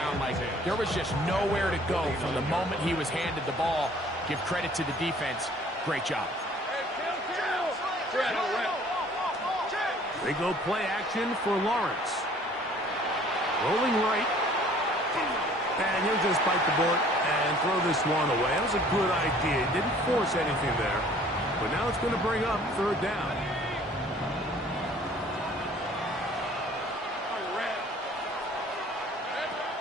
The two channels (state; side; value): normal; both; correlation 0.54